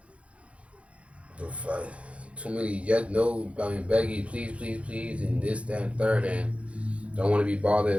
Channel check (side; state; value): left; late; 0.062 ms